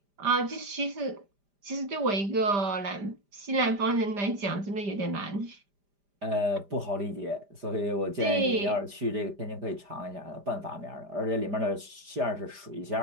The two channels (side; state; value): left; late; 5.0 ms